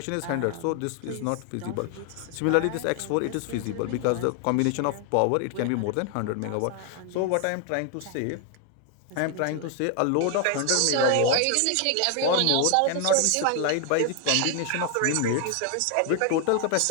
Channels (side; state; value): both; different; correlation 0.00